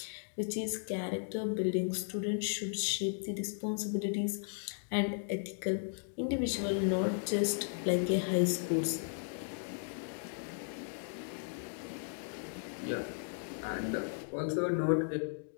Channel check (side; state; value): right; silent; digital silence